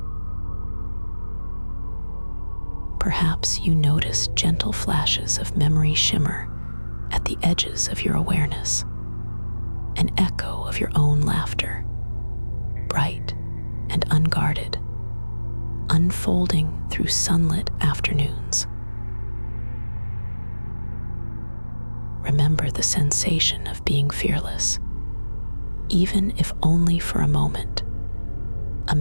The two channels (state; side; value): inverted; both; correlation -1.00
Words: Perhaps you notice gentle flashes of memory shimmer at the edges of your awareness, an echo of your own laughter, bright and unguarded, unfolding through sunlit afternoons. Remember the sensation of being fearless, even if only for a moment, a